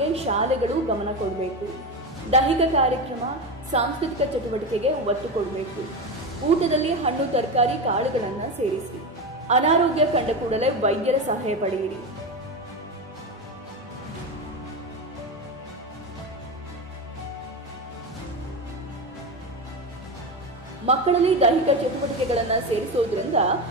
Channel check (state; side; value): normal; both; correlation 0.18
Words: ಶಾಲೆಗಳು ಗಮನ ಕೊಡಬೇಕು. ದೈಹಿಕ ಕಾರ್ಯಕ್ರಮ, ಸಾಂಸ್ಕೃತಿಕ ಚಟುವಟಿಕೆಗೆ ಒತ್ತು ಕೊಡಬೇಕು. ಊಟದಲ್ಲಿ ಹಣ್ಣು, ತರಕಾರಿ, ಕಾಳುಗಳನ್ನ ಸೇರಿಸಿ. ಅನಾರೋಗ್ಯ ಕಂಡ ಕೂಡಲೇ ವೈದ್ಯರ ಸಲಹೆ ಪಡೆಯಿರಿ. ಮಕ್ಕಳಲ್ಲಿ ದೈಹಿಕ ಚಟುವಟಿಕೆಗಳನ್ನ ಸೇರಿಸೋದ್ರಿಂದ